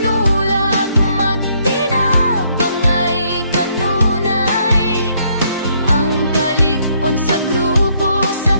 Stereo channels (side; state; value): both; inverted; correlation -0.70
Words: magtinabangay kanunay, ang kalig-on sa grupo sa